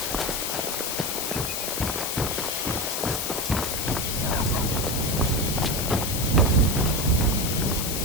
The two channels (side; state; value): left; noise; hiss, 2 dB below the sound